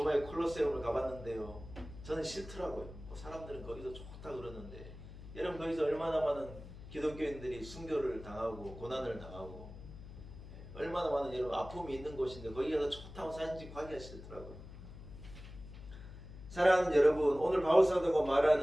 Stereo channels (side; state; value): left; noise; hum, 14 dB below the sound